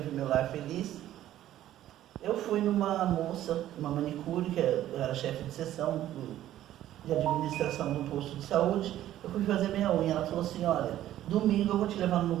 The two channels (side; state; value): left; quieter; 12.9 dB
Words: ver meu lar feliz. Eu fui numa moça, uma manicure, que eu era chefe de seção de administração do posto de saúde. Eu fui fazer minha unha. Ela falou assim: olha, domingo eu vou te levar num